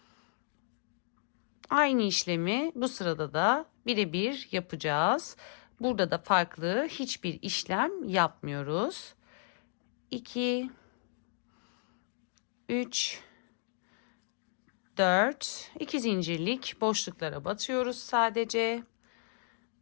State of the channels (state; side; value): silent; right; digital silence